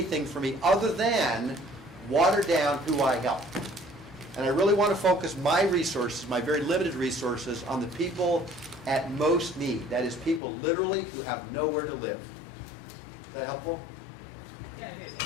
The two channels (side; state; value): right; drops out; at 10.4 s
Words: for me other than water down who I help. And I really want to focus my resources, my very limited resources, on the people at most need. That is people literally who have nowhere to live. Is that helpful? Yeah, it